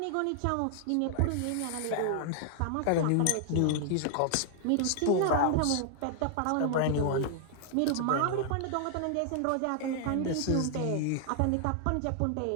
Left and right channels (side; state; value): both; different; correlation 0.00